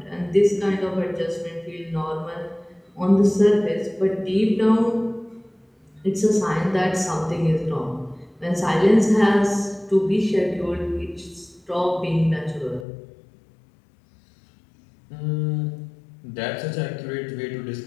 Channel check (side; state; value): right; drops out; at 12.9 s